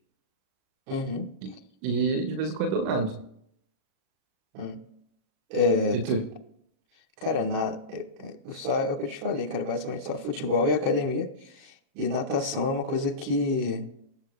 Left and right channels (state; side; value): late; left; 37 ms